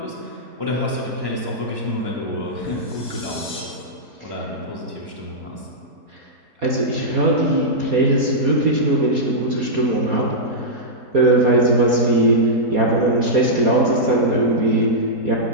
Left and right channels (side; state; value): left; late; 4.2 ms